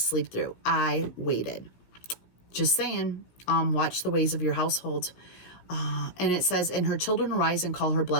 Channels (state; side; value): late; right; 16 ms